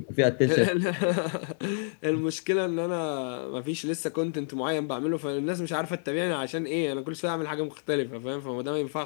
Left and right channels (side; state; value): right; silent; digital silence